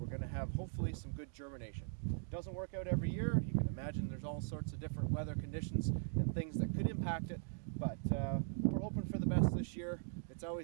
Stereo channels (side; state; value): left; silent; digital silence